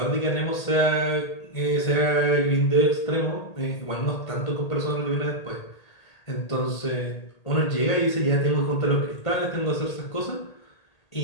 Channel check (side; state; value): right; late; 1.8 ms